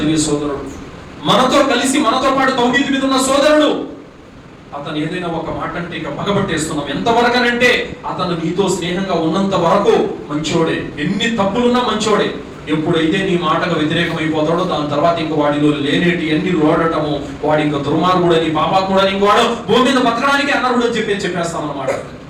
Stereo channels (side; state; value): both; identical; correlation 1.00